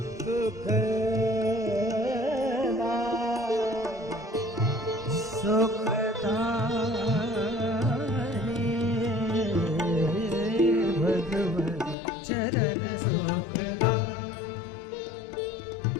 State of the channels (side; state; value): right; drops out; at 12.0 s